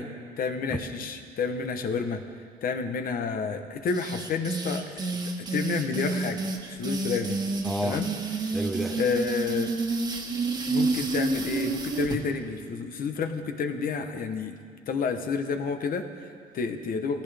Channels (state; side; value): normal; both; correlation 0.55